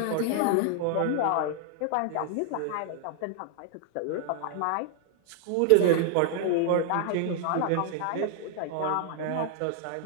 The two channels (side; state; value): both; different; correlation 0.00